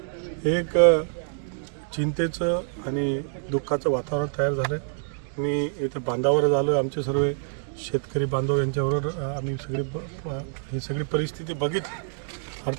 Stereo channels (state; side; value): silent; left; digital silence